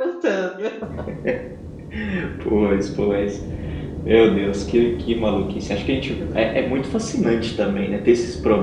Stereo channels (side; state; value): both; identical; correlation 1.00